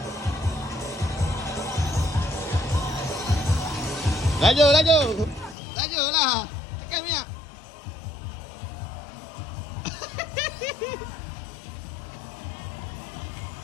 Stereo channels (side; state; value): right; drops out; at 5.6 s